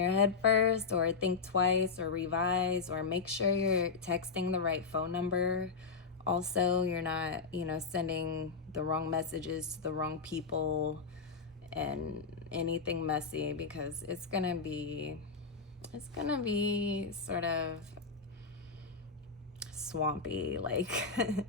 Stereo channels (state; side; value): quieter; right; 4.9 dB